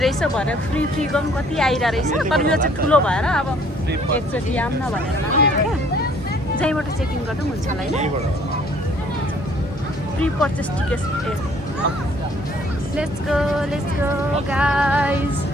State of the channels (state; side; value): normal; both; correlation 0.59